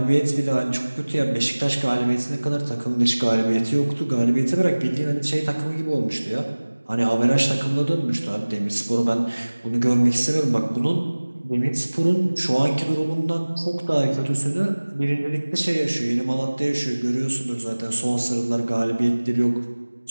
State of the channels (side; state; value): both; inverted; correlation -1.00